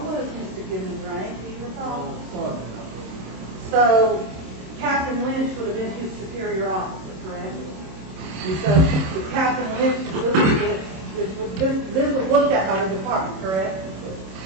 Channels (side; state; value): left; late; 26 ms